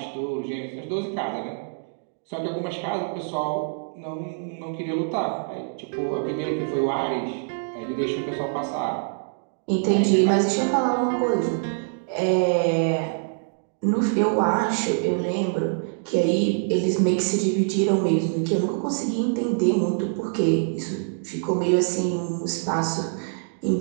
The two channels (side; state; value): left; silent; digital silence